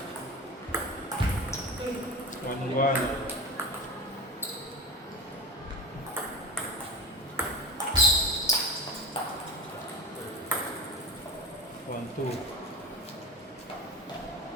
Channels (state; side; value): normal; both; correlation 0.28